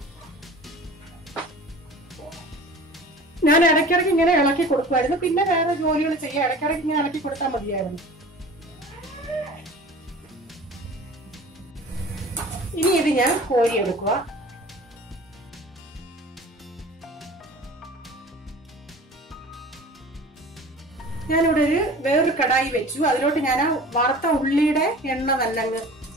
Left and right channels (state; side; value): normal; both; correlation 0.42